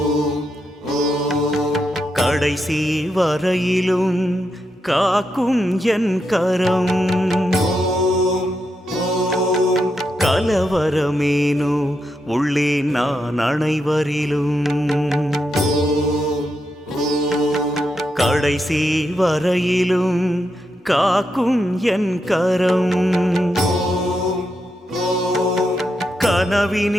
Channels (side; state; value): both; normal; correlation 0.84